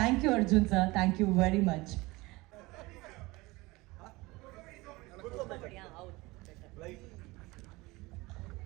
you Arjun sir, thank you very much.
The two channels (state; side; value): quieter; left; 22.1 dB